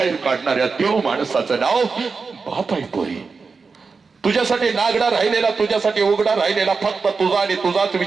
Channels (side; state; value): left; quieter; 4.7 dB